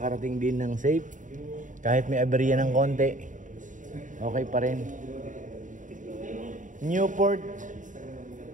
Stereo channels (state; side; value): late; left; 0.37 ms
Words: din ng safe. Kahit may aberya ng konti, okay pa rin. Newport